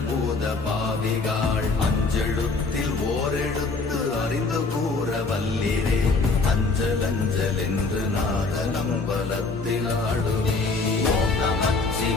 பாவிகாள், அஞ்செழுத்தில் ஓரெழுத்து அறிந்து கூற வல்லிரே, அஞ்சல் அஞ்சல் என்று நாத நம்பலத்தில் ஆடுவே. ஓம்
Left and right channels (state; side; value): quieter; right; 3.9 dB